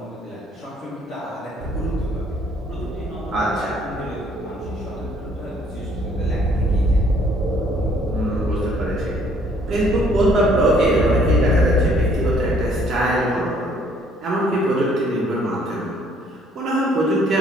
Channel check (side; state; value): both; normal; correlation 0.62